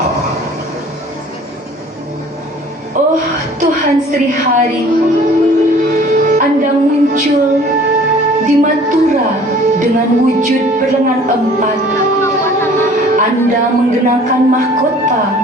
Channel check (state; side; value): normal; both; correlation 0.51